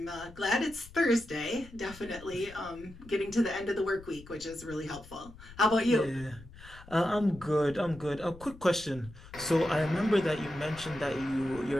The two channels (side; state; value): left; noise; rumble, 18 dB below the sound